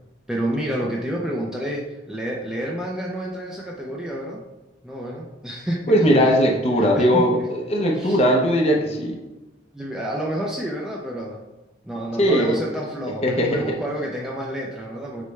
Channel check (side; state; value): both; normal; correlation 0.54